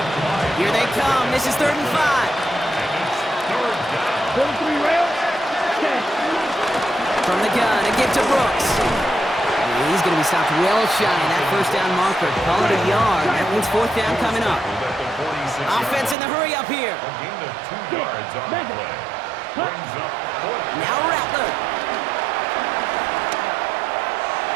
Here they come. This is 3rd and 5. 43 rail. From the gun, a give to Brooks. And he's going to be stopped well shy of that first down marker. Call it a yard. That means 4th down coming up. Offense in the hurry up here. A gain of 2 yards on the play. Brings up 4th. Now Rattler.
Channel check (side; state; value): left; drops out; at 16.2 s